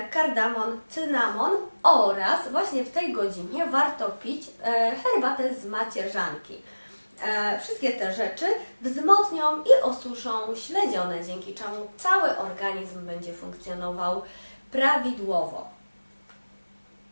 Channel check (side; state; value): both; inverted; correlation -1.00